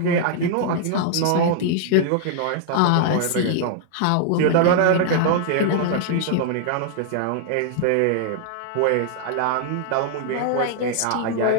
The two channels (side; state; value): both; different; correlation -0.01